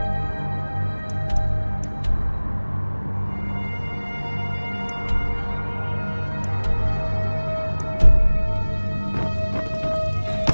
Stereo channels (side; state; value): both; inverted; correlation -1.00